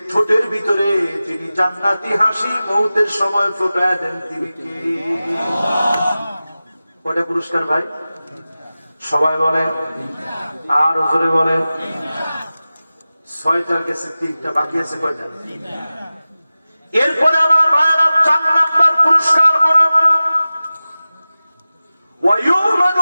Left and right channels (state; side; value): inverted; both; correlation -0.96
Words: ঠোঁটের ভিতরে যিনি জান্নাতি হাসি মৌতের সময় ফোটায় দেন তিনি কে? কয়টা পুরস্কার ভাই? সবাই বলেন, আর জোরে বলেন। 6টার গেছে, 3টা বাকি আছে। কয়টা? এরপরে আমার ভাইয়েরা 4 নম্বর পুরস্কার হল